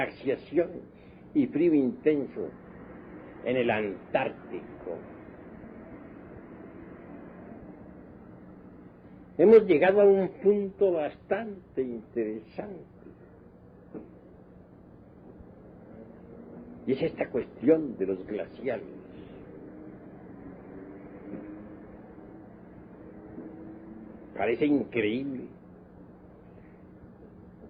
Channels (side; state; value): both; identical; correlation 1.00